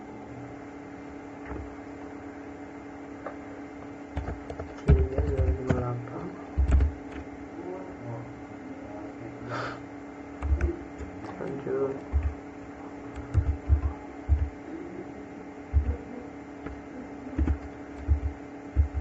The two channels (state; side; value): identical; both; correlation 1.00